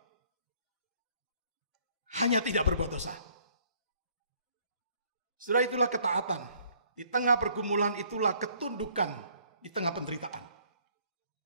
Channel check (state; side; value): inverted; both; correlation -0.61